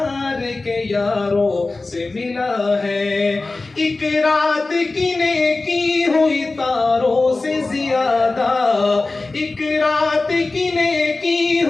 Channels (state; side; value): quieter; right; 3.4 dB